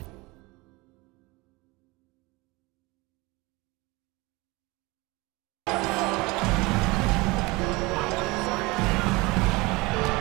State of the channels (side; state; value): left; quieter; 23.7 dB